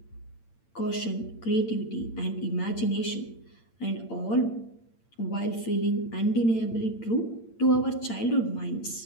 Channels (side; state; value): right; late; 8.8 ms